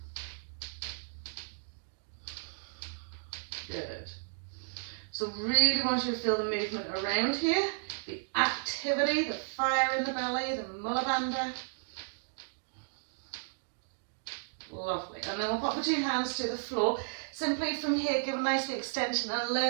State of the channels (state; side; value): silent; left; digital silence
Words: Good. So really want you to feel the movement around here, the activity, the fire in the belly, the Mula Bandha. Lovely. And then we'll pop the two hands to the floor. Simply from here, give a nice extension and